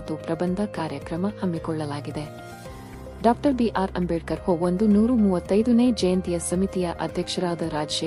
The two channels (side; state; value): both; identical; correlation 1.00